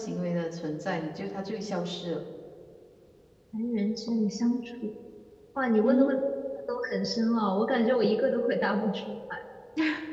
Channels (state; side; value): identical; both; correlation 1.00